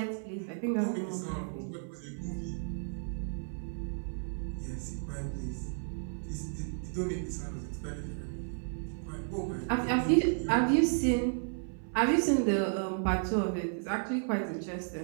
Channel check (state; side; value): silent; left; 56 dB below the other